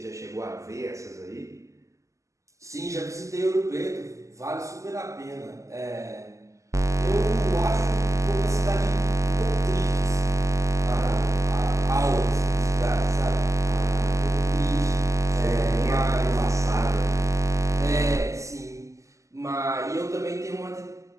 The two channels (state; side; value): late; left; 0.15 ms